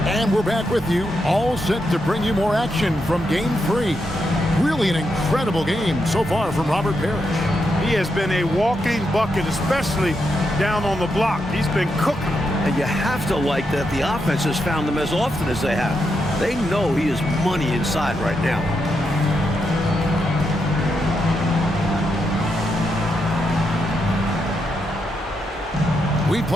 And we're back with you, all set to bring you more action from Game 3. Really an incredible game so far from Robert Parrish. He has been a walking bucket, especially down on the block. He's been cooking. And you have to like that the offense has found him as often as they have. They know he is money inside right now. We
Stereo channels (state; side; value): normal; both; correlation 0.83